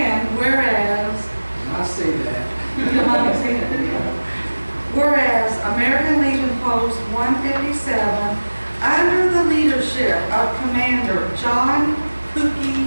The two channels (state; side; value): inverted; both; correlation -1.00